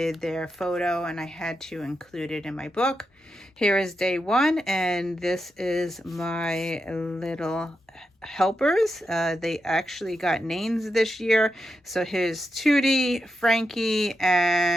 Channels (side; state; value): both; normal; correlation 0.87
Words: their photo, and I had to include it in my book. Here is day one, and this is my little helpers. They actually got names this year. So here's Tootie, Frankie,